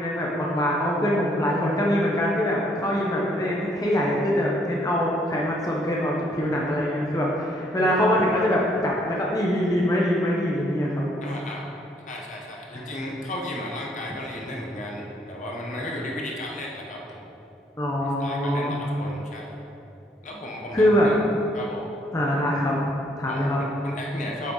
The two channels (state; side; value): normal; both; correlation 0.67